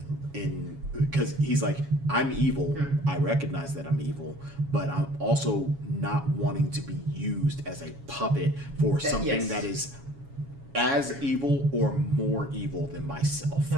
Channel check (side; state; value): left; late; 7.2 ms